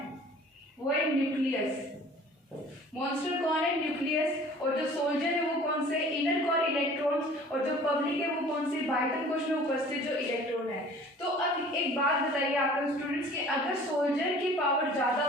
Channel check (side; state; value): both; normal; correlation 0.48